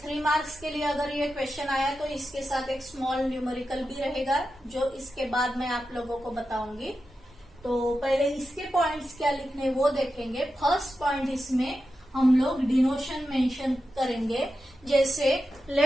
3 मार्क्स के लिए अगर ये क्वेश्चन आया तो इसके साथ एक स्मॉल न्यूमेरिकल भी रहेगा जो इसके बाद मैं आप लोगों को बताऊंगी। तो पहले इसके पॉइंट्स क्या लिखने वो देखेंगे। फर्स्ट पॉइंट इसमें हम लोग डिनोशन मेंशन करेंगे, जैसे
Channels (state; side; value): normal; both; correlation 0.90